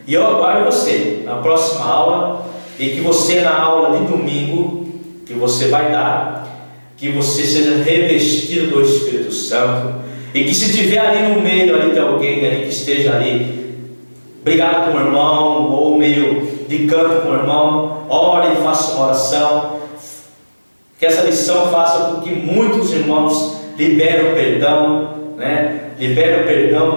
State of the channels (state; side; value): inverted; both; correlation -1.00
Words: e eu aguardo você na próxima aula, e que você na aula de domingo, que você vai dar, que você seja revestido do Espírito Santo, e que se tiver ali no meio ali de alguém ali que esteja ali brigado com o irmão, ou meio de canto com o irmão, ore e faça uma oração, que essa lição faça com que muitos irmãos liberem o perdão, liberem o perdão,